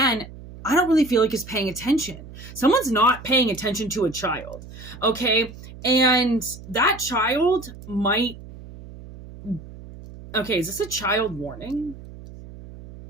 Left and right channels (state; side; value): noise; right; hum, 16 dB below the sound